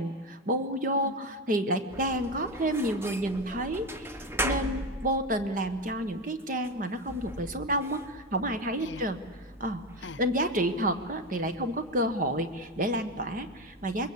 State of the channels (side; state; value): both; normal; correlation 0.18